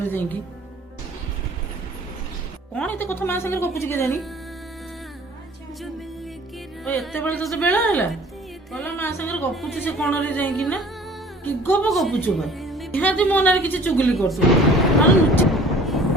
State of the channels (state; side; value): normal; both; correlation 0.49